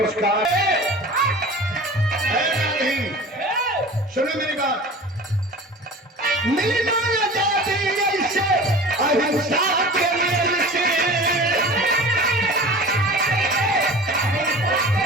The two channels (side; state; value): both; normal; correlation 0.38